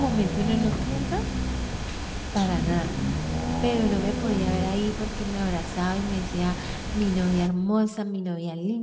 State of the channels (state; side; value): identical; both; correlation 1.00